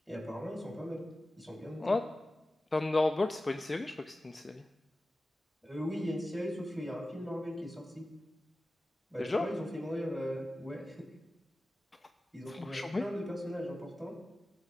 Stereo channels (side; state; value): both; normal; correlation 0.95